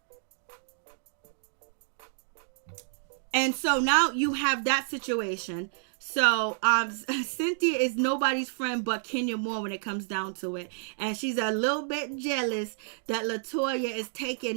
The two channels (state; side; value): silent; left; 58 dB below the other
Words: And so now you have that situation. So, Cynthia is nobody's friend but Kenya Moore when it comes down to it. And she's a little bit jealous that Latoya is